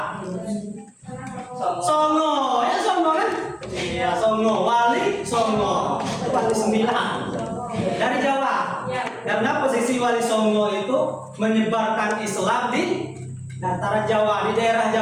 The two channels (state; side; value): identical; both; correlation 1.00